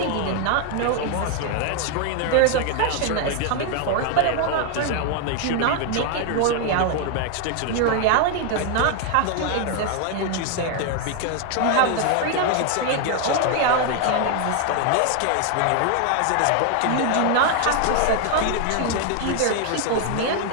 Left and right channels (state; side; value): different; both; correlation 0.01